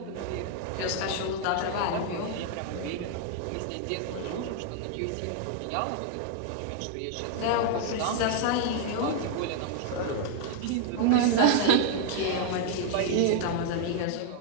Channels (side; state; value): both; different; correlation 0.00